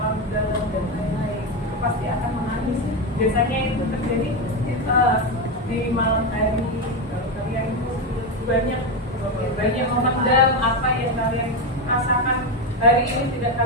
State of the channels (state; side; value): normal; both; correlation 0.11